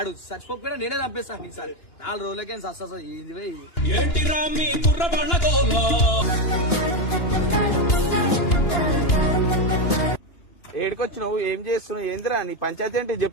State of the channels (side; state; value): right; late; 2.9 ms